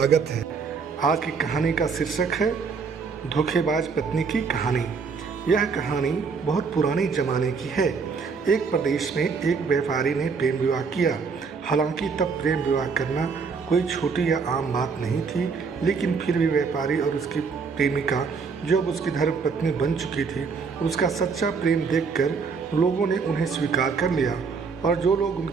है। आज की कहानी का शीर्षक है धोखेबाज पत्नी की कहानी। यह कहानी बहुत पुराने ज़माने की है। एक प्रदेश में एक व्यापारी ने प्रेम विवाह किया। हालांकि तब प्रेम विवाह करना कोई छोटी या आम बात नहीं थी, लेकिन फिर भी व्यापारी और उसकी प्रेमिका, जो अब उसकी धर्मपत्नी बन चुकी थी, उसका सच्चा प्रेम देखकर लोगों ने उन्हें स्वीकार कर लिया और जो लोग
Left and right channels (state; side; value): quieter; left; 5.2 dB